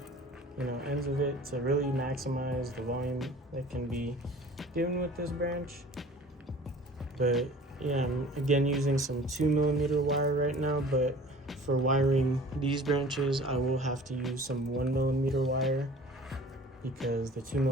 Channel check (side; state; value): both; normal; correlation 0.45